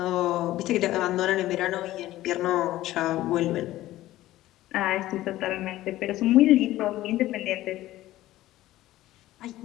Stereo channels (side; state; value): right; quieter; 15.5 dB